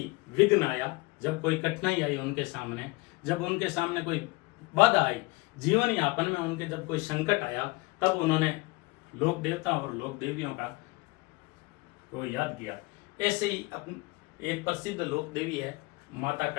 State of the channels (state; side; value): quieter; right; 24.4 dB